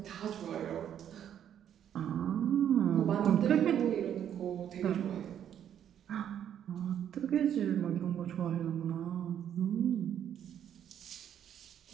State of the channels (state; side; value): quieter; left; 9.7 dB